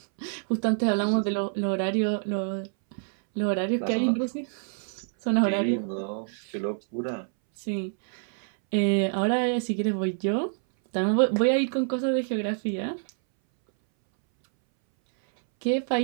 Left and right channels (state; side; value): silent; left; 60 dB below the other